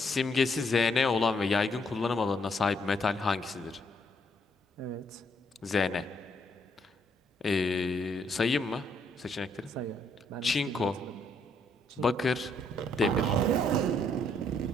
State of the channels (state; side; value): normal; both; correlation 0.71